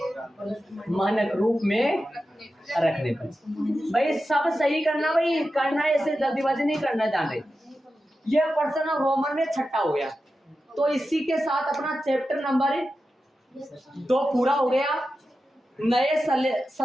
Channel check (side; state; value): both; normal; correlation 0.91